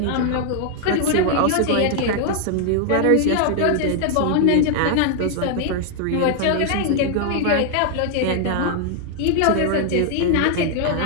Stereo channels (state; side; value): different; both; correlation 0.00